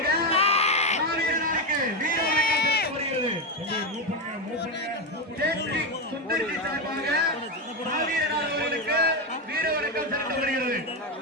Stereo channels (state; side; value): normal; both; correlation 0.10